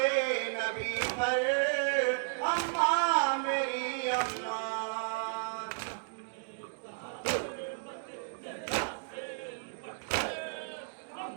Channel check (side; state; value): left; silent; digital silence